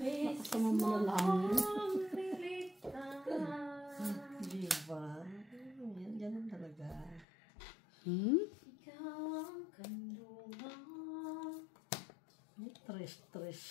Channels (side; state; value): right; drops out; at 7.2 s